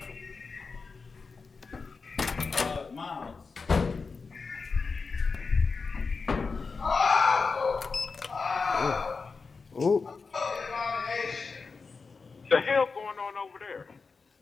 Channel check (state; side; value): quieter; right; 4.6 dB